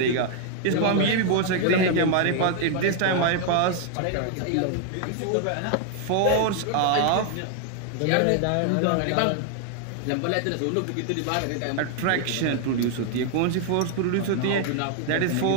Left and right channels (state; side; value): different; both; correlation 0.00